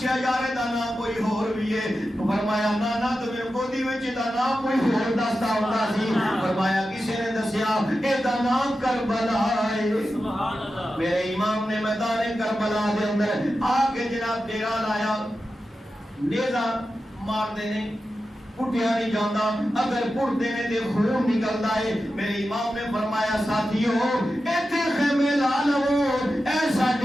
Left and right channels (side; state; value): both; normal; correlation 0.91